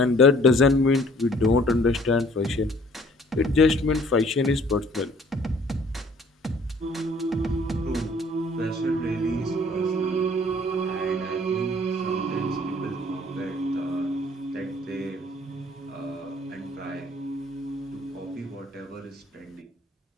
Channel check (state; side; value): normal; both; correlation 0.57